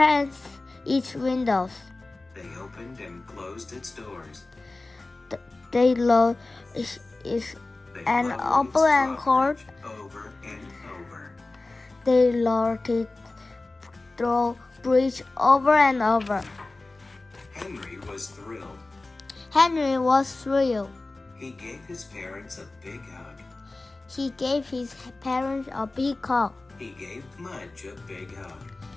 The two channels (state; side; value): quieter; right; 3.2 dB